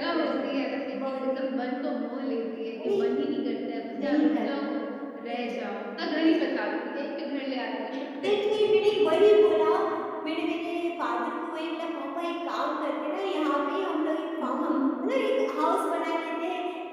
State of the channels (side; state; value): both; identical; correlation 1.00